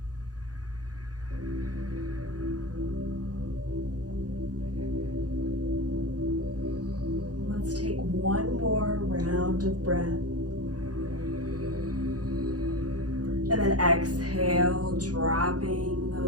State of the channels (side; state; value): left; late; 0.68 ms